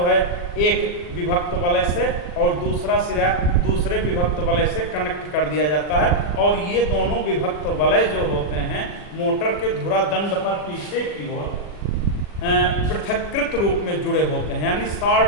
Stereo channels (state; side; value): late; right; 40 ms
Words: है एक विभक्त वलय से और दूसरा सिरा दूसरे विभक्त वलय से कनेक्ट कर दिया जाता है, और ये दोनों विभक्त वलय जो होते हैं मोटर के धुरा दंड पर पीछे की ओर पृथक्कृत रूप में जुड़े होते हैं, यानी